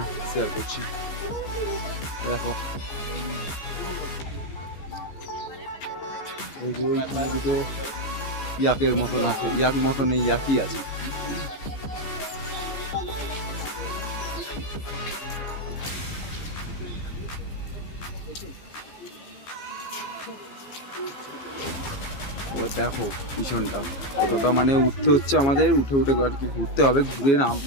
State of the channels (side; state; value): right; late; 15 ms